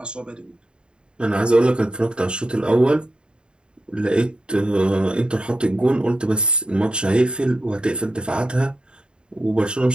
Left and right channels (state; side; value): late; left; 0.051 ms